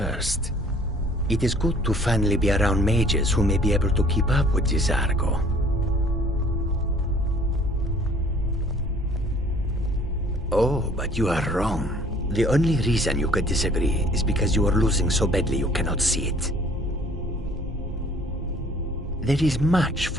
It is good to finally be around mages who may be able to keep up with Cesargo. Oh, but you are wrong. The only reason you could disagree is because you are losing so badly you cannot see it. There is much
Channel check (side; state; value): both; normal; correlation 0.55